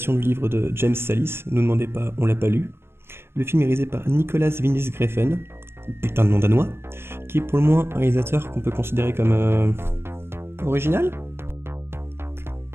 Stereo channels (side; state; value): left; late; 0.12 ms